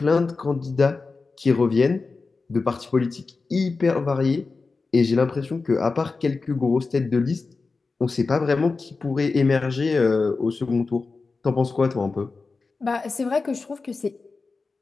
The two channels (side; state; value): right; quieter; 4.1 dB